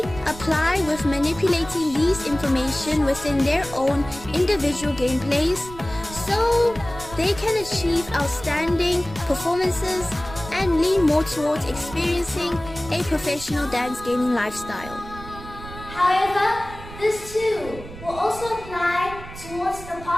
apply with manipulating these information within their own individual gameplays, so they can achieve outstanding performances and lean more towards experiencing a professional dance gaming lifestyle. However, this too will also apply towards the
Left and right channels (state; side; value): noise; right; rumble, 14 dB below the sound